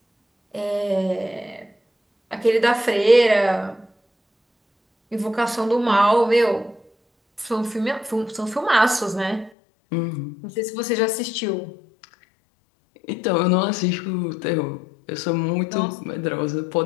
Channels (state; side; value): drops out; right; at 9.5 s